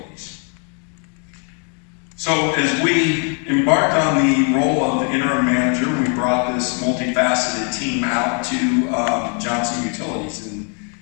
So as we embarked on the role of interim manager, we brought this multifaceted team out to Johnson Utilities.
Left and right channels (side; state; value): right; quieter; 40.0 dB